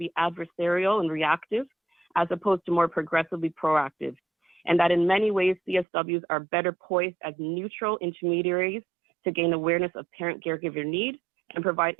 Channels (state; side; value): drops out; left; at 5.9 s